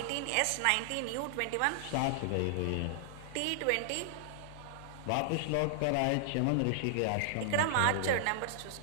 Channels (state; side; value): different; both; correlation -0.01